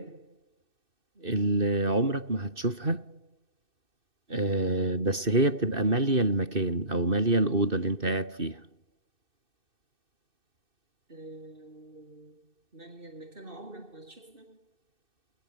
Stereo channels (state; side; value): late; left; 2.6 ms